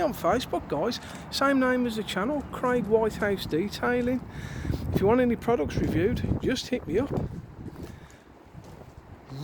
on Facebook, guys. Same name as the channel, Craig Whitehouse Detailing. If you want any products reviewed, just hit me up.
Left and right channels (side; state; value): both; identical; correlation 1.00